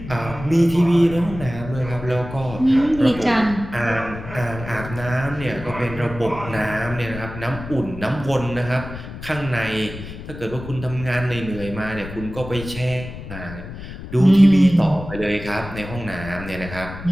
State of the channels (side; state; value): left; noise; rumble, 11 dB below the sound